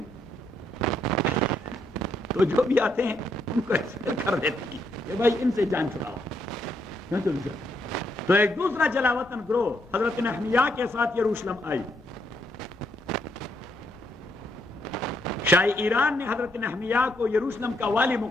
تو جو بھی آتے ہیں ان کو ایکسپیل کر دیتے ہیں کہ بھائی ان سے جان چھڑاؤ. تو ایک دوسرا جلاوطن گروہ حضرت نحمیہ کے ساتھ یروشلم آئی. شاہ ایران نے حضرت نحمیہ کو یروشلم کا والی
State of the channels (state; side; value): normal; both; correlation 0.75